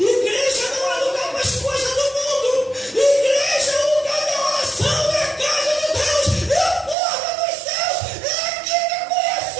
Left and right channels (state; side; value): drops out; left; at 7.0 s